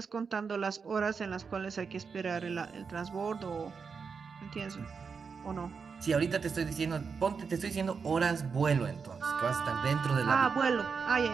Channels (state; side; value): quieter; left; 5.6 dB